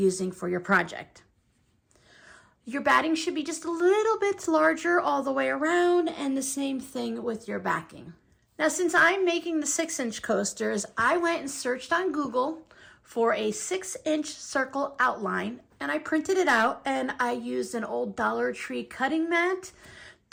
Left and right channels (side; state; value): both; identical; correlation 1.00